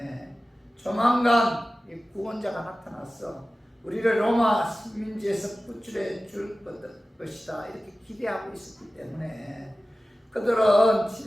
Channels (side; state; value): both; normal; correlation 0.96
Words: 조만간 이 구원자가 나타나서 우리를 로마 식민지에서 구출해 줄 것이다 이렇게 기대하고 있었기 때문에 그들은